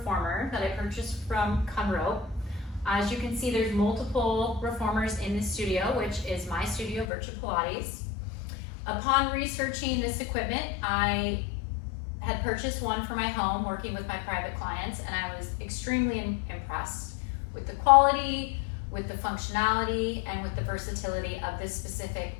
that I purchased from Conroe. As you can see, there's multiple reformers in the studio, which is my studio, Vyrtu Pilates. Upon researching this equipment, I had purchased one for my home working with my private clients, and I was extremely impressed with the quality, with the functionality, and with the versatility of this specific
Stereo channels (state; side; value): drops out; right; at 7.1 s